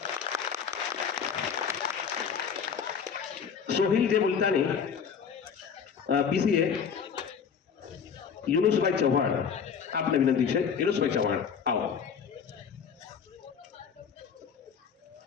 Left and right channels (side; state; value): right; quieter; 6.8 dB